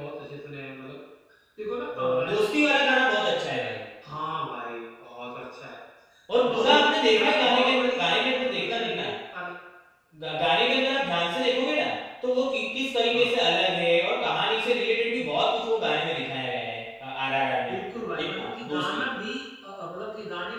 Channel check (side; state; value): both; identical; correlation 1.00